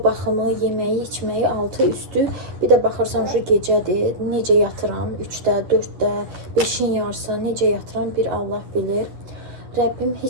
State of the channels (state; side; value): late; left; 10 ms